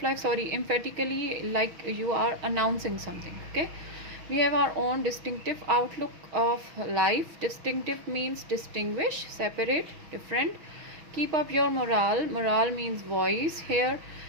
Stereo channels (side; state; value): left; late; 6.4 ms